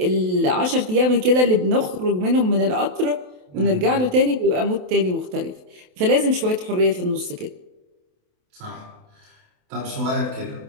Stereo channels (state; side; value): late; left; 28 ms